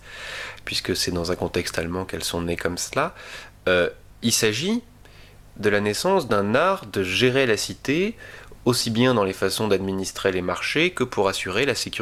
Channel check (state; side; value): identical; both; correlation 1.00